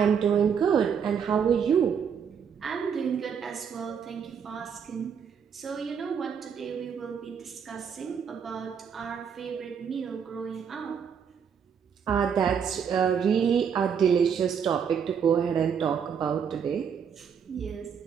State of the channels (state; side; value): quieter; left; 7.2 dB